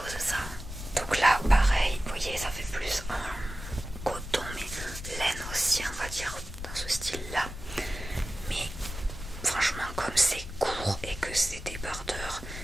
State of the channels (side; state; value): left; noise; rumble, 10 dB below the sound